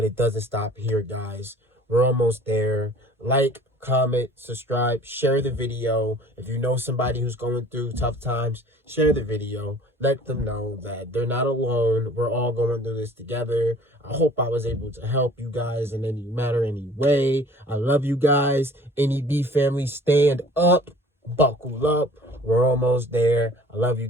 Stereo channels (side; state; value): both; normal; correlation 0.49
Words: it doesn't stop here, guys. We're almost there. Like, comment, subscribe, share the video. If you know somebody who's going through tough times, share the video. Let them know that they're not alone. We're all going through this together. I hope I was able to help you guys in any matter, any way. I love you guys. NEB family, stand up. Buckle up. We're almost there. I love you